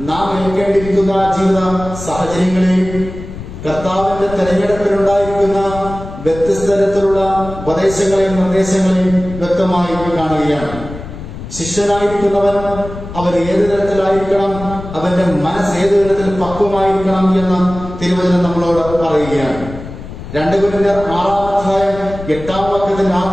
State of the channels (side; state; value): left; noise; rumble, 12 dB below the sound